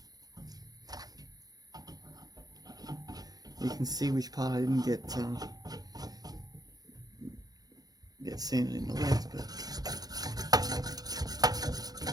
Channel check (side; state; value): left; late; 0.19 ms